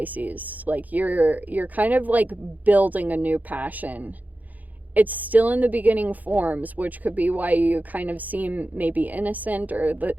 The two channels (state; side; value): late; left; 0.080 ms